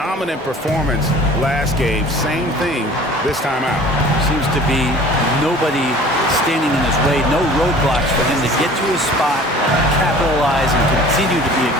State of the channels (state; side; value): normal; both; correlation 0.46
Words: performance last game. Same thing this time out. Seems to be nobody standing in his way. No roadblocks for him to get to his spot, capitalize, and continue to be